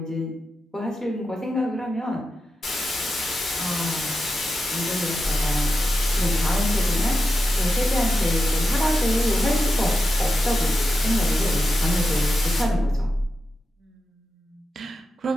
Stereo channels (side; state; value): both; normal; correlation 0.89